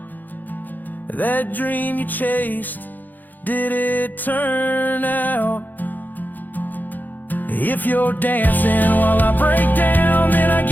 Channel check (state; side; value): late; right; 0.085 ms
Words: That dream you chased, did it turn out? If you're dancing while I break down, then I